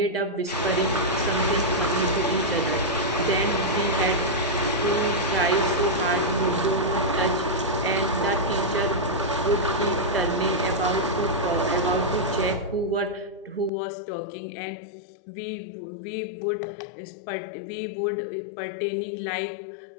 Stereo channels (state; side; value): drops out; right; at 13.7 s